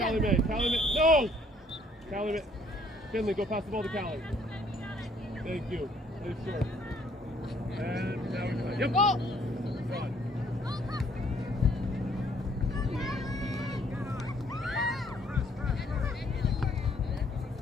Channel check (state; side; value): normal; both; correlation 0.63